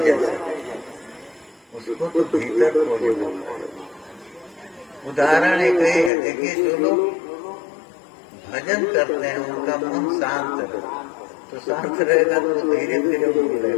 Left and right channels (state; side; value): drops out; right; at 6.1 s